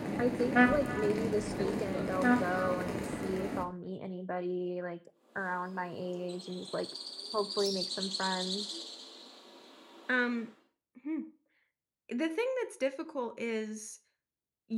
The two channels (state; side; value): identical; both; correlation 1.00